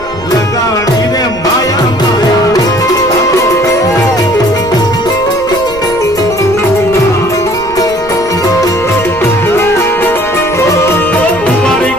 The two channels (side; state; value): right; noise; rumble, 18 dB below the sound